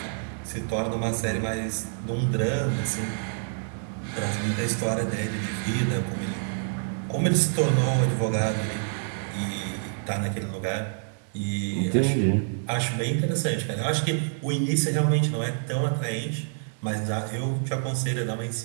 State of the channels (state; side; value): silent; left; 60 dB below the other